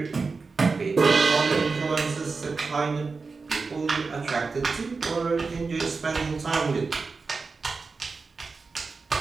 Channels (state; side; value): quieter; left; 4.4 dB